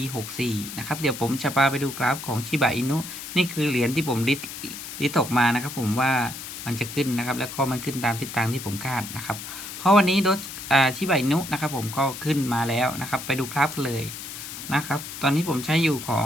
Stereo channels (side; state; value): left; noise; hiss, 10 dB below the sound